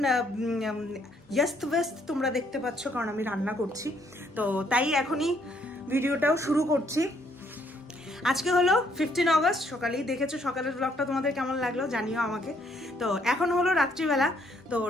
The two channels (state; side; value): normal; both; correlation 0.68